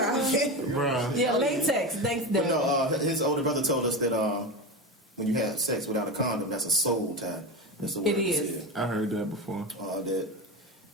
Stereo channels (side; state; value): both; normal; correlation 0.21